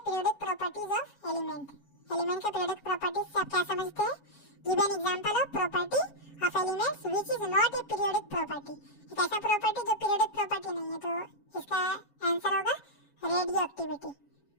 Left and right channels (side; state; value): right; late; 7.1 ms